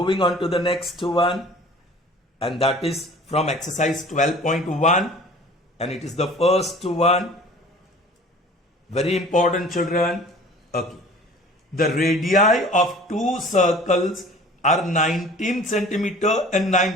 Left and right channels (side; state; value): both; normal; correlation 0.46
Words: on to the next one, and that is from exercise 12.1, and it is the first one. Very important, children. Okay. The radii of two circles are 19 centimeter and